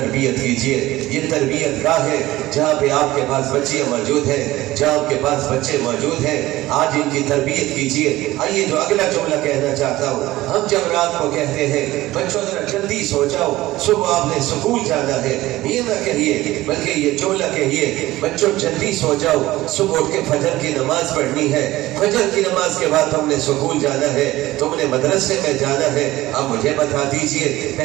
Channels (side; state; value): left; quieter; 17.1 dB